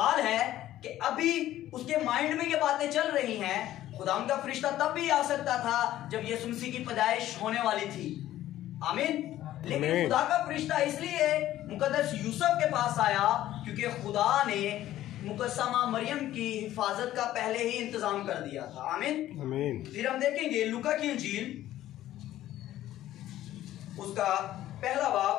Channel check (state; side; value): quieter; right; 13.7 dB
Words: है कि अभी उसके माइंड में ये बातें चल रही हैं, खुदा उनका फरिश्ता तब भी आ सकता था जब यीशु मसीह की पैदाइश होने वाली थी। आमीन। लेकिन खुदा का फरिश्ता इसलिए मुकद्दस यूसुफ के पास आया क्योंकि खुदा ने मुकद्दसा माँ मरियम की हिफाजत का पहले ही इंतजाम कर दिया था। आमीन आमीन। फिर हम देखेंगे लूका की इंजील उसका पहला